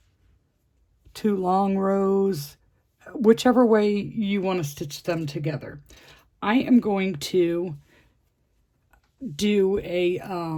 2 long rows, whichever way you want to stitch them together. I am going to do a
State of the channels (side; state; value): both; identical; correlation 1.00